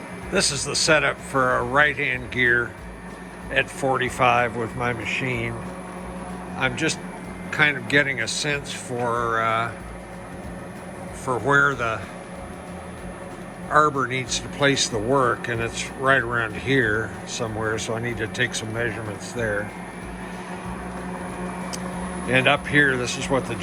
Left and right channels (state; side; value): identical; both; correlation 1.00